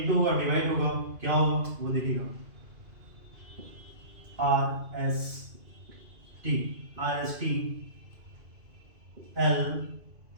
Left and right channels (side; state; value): left; late; 2.5 ms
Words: होगा डिवाइड होगा क्या होगा वो देखिएगा, R S T L